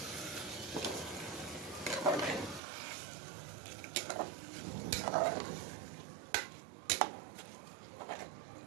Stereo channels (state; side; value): drops out; left; at 2.6 s